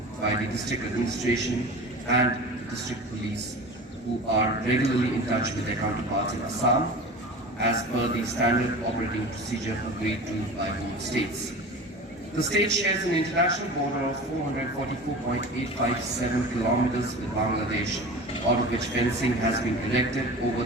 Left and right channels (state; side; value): normal; both; correlation 0.35